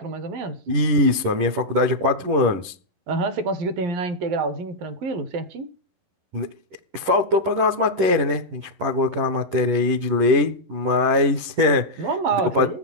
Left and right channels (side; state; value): left; late; 11 ms